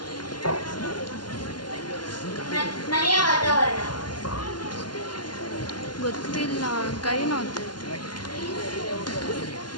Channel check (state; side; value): late; right; 0.71 ms